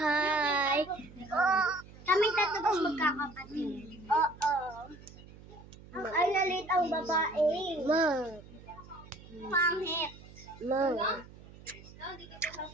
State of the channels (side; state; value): right; noise; hum, 19 dB below the sound